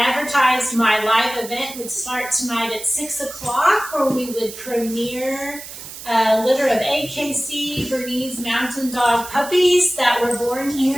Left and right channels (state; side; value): noise; right; hiss, 13 dB below the sound